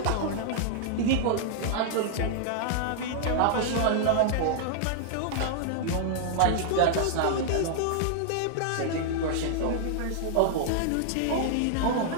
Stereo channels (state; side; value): different; both; correlation -0.01